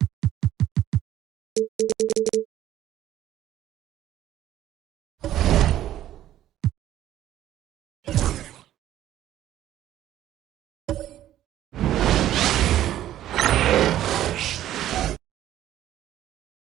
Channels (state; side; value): quieter; left; 12.6 dB